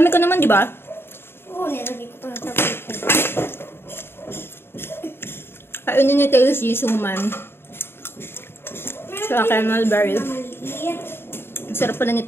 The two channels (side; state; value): right; late; 0.11 ms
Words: ko naman, di ba? Oo, nilagay ko ito sa paper. Kainin ni Tasty, suman. Sa akin, mulberry. Ang sarap pala